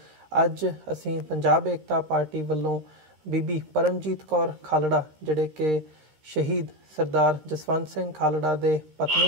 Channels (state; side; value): late; left; 13 ms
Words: ਅੱਜ ਅਸੀਂ ਪੰਜਾਬ ਏਕਤਾ ਪਾਰਟੀ ਵੱਲੋਂ ਬੀਬੀ ਪਰਮਜੀਤ ਕੌਰ ਖਾਲੜਾ, ਜਿਹੜੇ ਕਿ ਸ਼ਹੀਦ ਸਰਦਾਰ ਜਸਵੰਤ ਸਿੰਘ ਖਾਲੜਾ ਦੇ